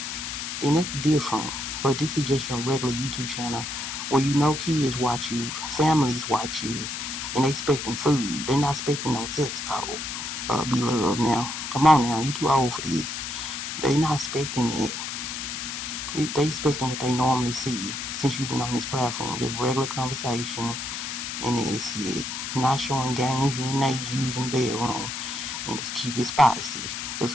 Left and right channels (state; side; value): noise; left; hiss, 5 dB below the sound